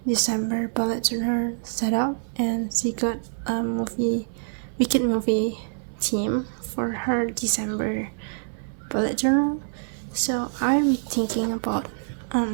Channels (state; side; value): silent; left; digital silence